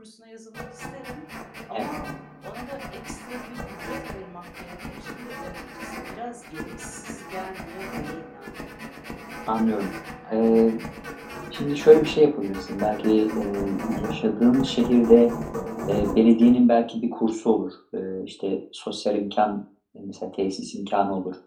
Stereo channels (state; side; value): identical; both; correlation 1.00